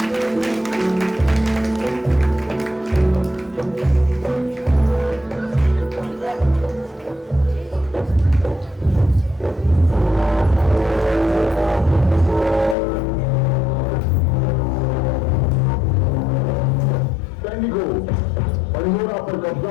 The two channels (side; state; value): right; drops out; at 12.8 s